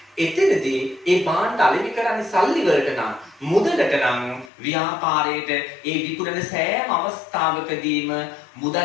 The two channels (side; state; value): right; drops out; at 4.5 s